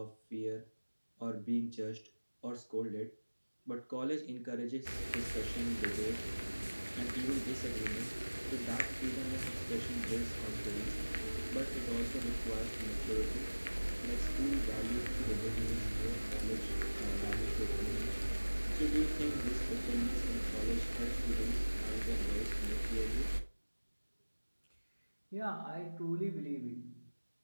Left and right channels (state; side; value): inverted; both; correlation -1.00